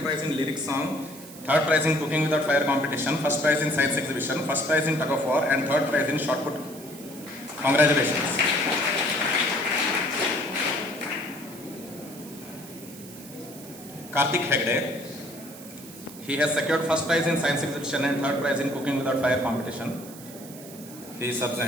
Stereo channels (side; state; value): right; noise; hiss, 17 dB below the sound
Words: prize in lyric song, third prize in cooking without fire competition, first prize in science exhibition, first prize in tug of war, and third prize in shot put. Congratulations. Karthik Hegde. He has secured first prize in science exhibition and third prize in cooking without fire competition. He is